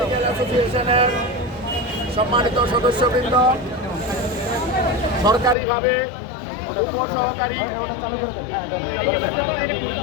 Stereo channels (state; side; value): drops out; right; at 5.6 s